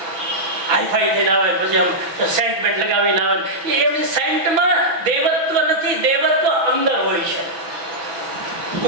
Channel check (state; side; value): late; left; 6.1 ms